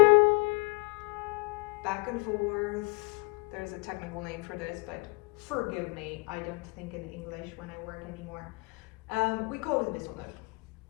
Back and forth. There's a technical name for this, but forgive me, I don't think in English when I work anymore. We call it a whistle note.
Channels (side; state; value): right; quieter; 28.8 dB